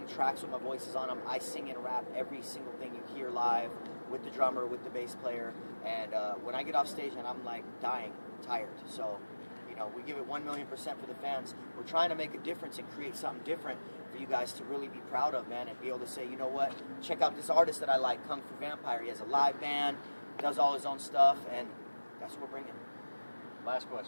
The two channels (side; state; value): both; inverted; correlation -1.00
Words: tracks with my voices on them. I sing and rap every single thing you hear live with the drummer, with the bass player. And when I get off stage, and I'm like dying, tired. So, you know, we give it 1,000,000% for the fans. We're trying to make a difference and create something different for you guys to really be proud of, man, and be able to say, you know what, check out this artist that I like, Kung Fu Vampire. He has a live band, does all his own stuff, and that's what we're bringing. Last